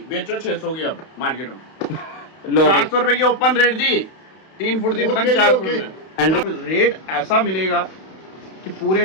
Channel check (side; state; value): right; late; 32 ms